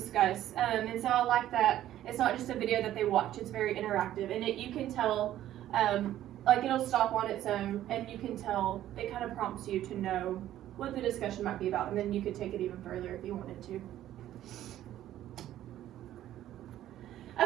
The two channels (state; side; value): quieter; left; 12.8 dB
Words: and so I like that it's not just a video that they watch, it's very interactive, and you can tell, like it'll stop on its own, and you can tell, it kind of prompts you to know what the discussion might be about, and then you could take it even further if you wanted to.